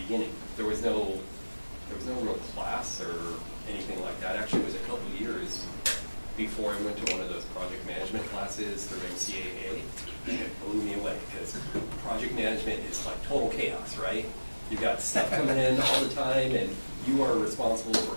beginning. There was no real class or anything like that. Actually, it was a couple of years before I went to one of those project management classes through MCAA, and it blew me away because project management is like total chaos, right? You've got stuff coming in all the time, and you are responsible for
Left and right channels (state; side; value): inverted; both; correlation -1.00